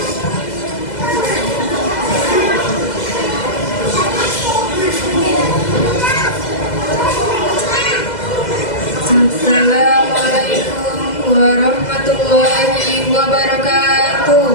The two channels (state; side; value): late; right; 2.0 ms